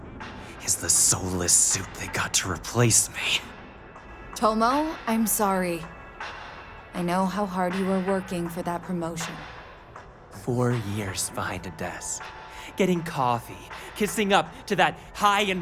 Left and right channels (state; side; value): identical; both; correlation 1.00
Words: is the soulless suit they got to replace me. Tomo, I'm sorry. I know how hard you were working for that promotion. 4 years behind a desk, getting coffee, kissing up to that high